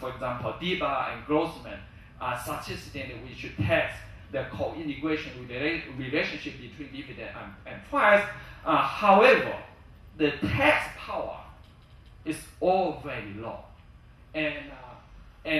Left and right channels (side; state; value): both; identical; correlation 1.00